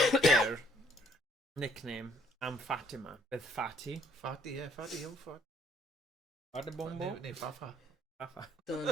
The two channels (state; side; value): normal; both; correlation 0.64